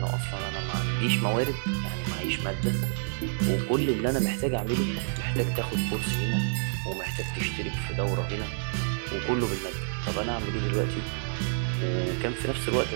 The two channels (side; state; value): left; silent; digital silence